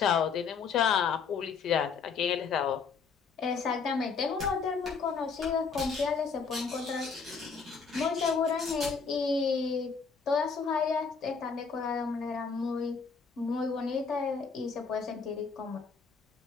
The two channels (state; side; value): quieter; right; 5.5 dB